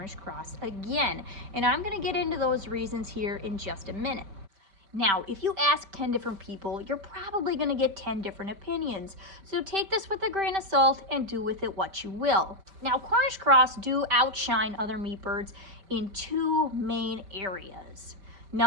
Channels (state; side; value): late; left; 5.1 ms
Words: cross again. And I'm going to get into those reasons here in just a minute. Now, if you ask 10 different people, you're probably going to get 10 different opinions. So take this with a grain of salt and do with it what you will. Now, Cornish cross do outshine other meat birds in two main areas.